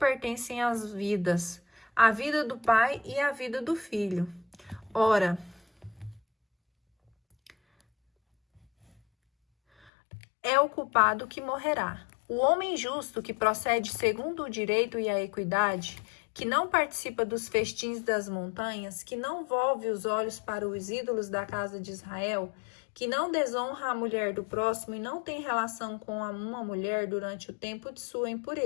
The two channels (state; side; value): drops out; right; at 9.9 s